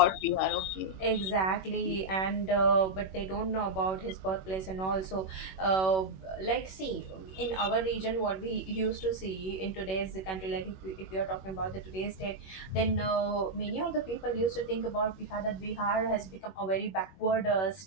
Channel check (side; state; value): right; late; 21 ms